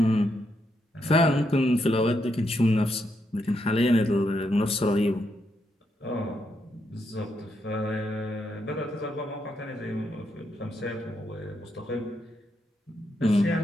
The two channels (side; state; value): both; normal; correlation 0.80